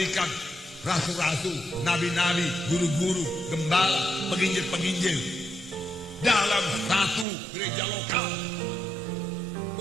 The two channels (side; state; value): left; drops out; at 7.2 s